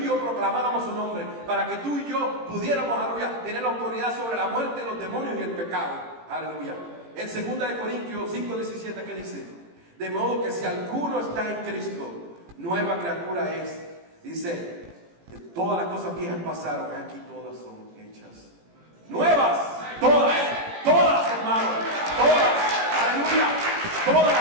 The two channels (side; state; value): left; late; 18 ms